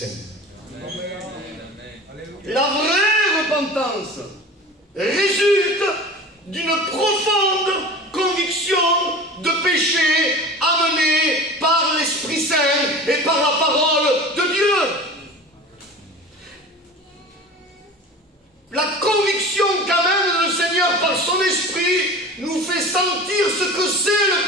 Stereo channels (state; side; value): normal; both; correlation 0.36